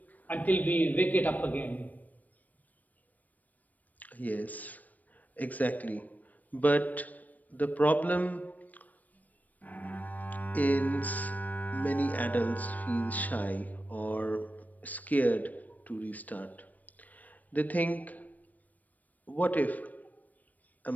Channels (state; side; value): late; right; 0.077 ms